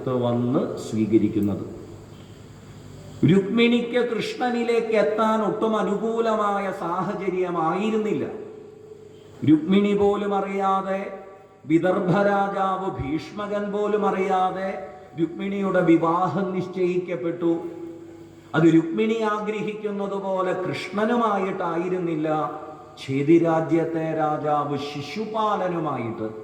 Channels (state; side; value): identical; both; correlation 1.00